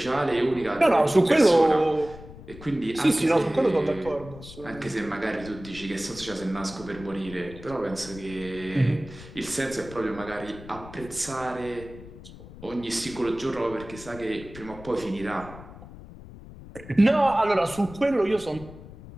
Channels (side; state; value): left; noise; rumble, 16 dB below the sound